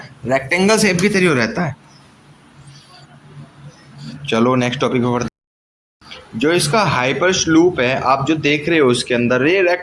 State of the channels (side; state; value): both; identical; correlation 1.00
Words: रेक्टेंगल शेप की तरह रहता है। चलो नेक्स्ट टॉपिक पे बढ़ते। जो इसका हाइपर लूप है आप जो देख रहे हो इसके अंदर, ये